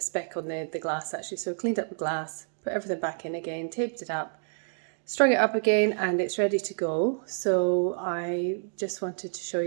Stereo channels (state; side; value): silent; left; digital silence